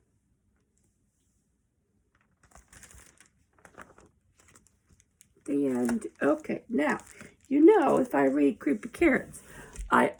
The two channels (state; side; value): identical; both; correlation 1.00